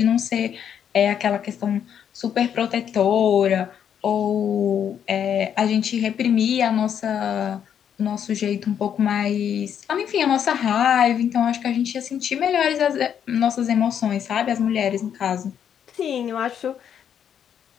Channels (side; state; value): right; quieter; 8.7 dB